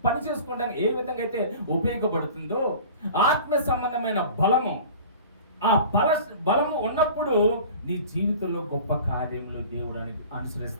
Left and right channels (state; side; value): inverted; both; correlation -0.42